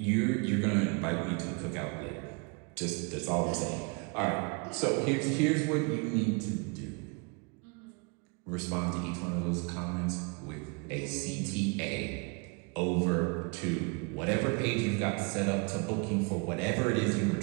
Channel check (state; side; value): quieter; left; 33.1 dB